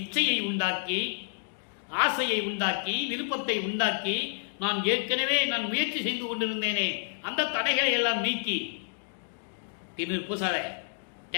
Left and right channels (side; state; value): right; silent; digital silence